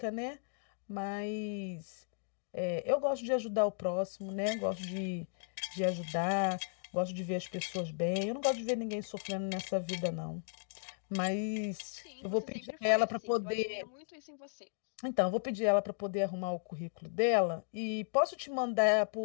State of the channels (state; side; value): silent; right; digital silence